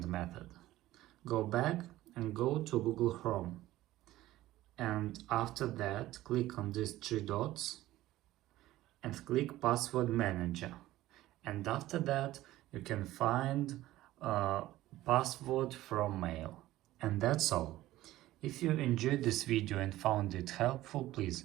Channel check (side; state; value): left; quieter; 15.8 dB